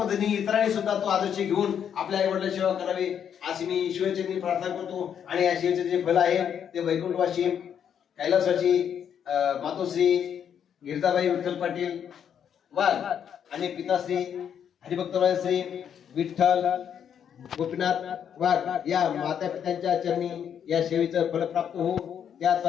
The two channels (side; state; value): right; quieter; 8.5 dB